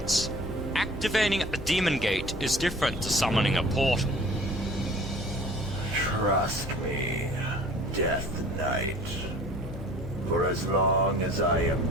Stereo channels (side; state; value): left; noise; hum, 12 dB below the sound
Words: activating a demon gate is different to summoning a portal. Trust me, Death Knight. For as long as I am